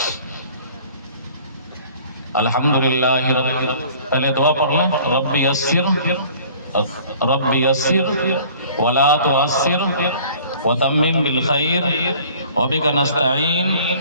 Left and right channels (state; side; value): inverted; both; correlation -0.50